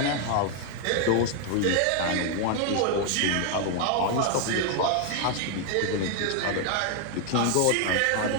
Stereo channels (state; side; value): different; both; correlation 0.00